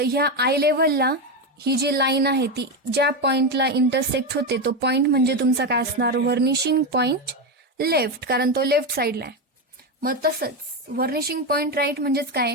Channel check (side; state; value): both; normal; correlation 0.12